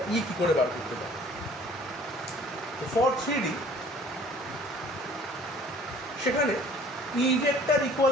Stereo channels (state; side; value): normal; both; correlation 0.52